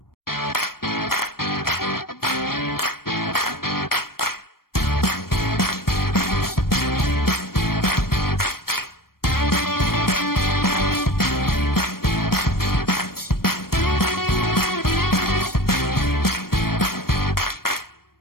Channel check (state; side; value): late; right; 0.93 ms